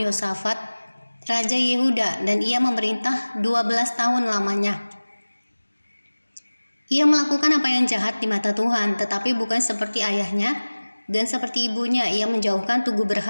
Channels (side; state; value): both; inverted; correlation -1.00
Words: Yosafat, Raja Yehuda, dan ia memerintah 12 tahun lamanya. Ia melakukan apa yang jahat di mata Tuhan, tetapi bukan seperti ayahnya, dan seperti ibunya ia menjauhkan tugu